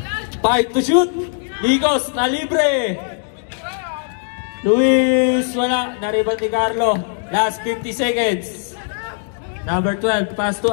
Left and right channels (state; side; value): silent; right; digital silence